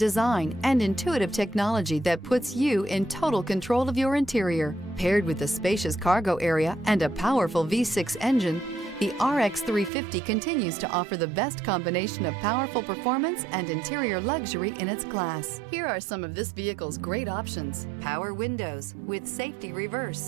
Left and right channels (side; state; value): left; drops out; at 9.9 s